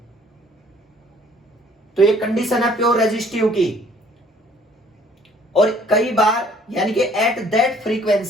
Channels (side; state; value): both; normal; correlation 0.58